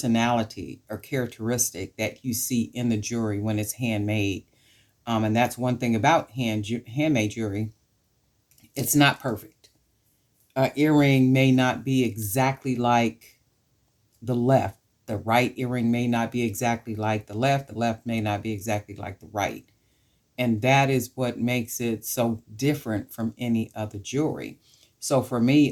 or characteristic that you see in the jewelry when it's handmade. And that's one thing about handmade jewelry. It's not perfect. An earring may not be exactly like the left. The right earring may not be exactly like the left. The left may not be exactly like the right. And that is what makes it so different from any other jewelry. So for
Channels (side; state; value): both; identical; correlation 1.00